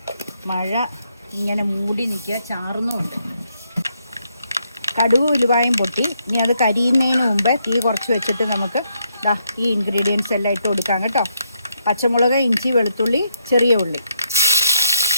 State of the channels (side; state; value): both; inverted; correlation -0.77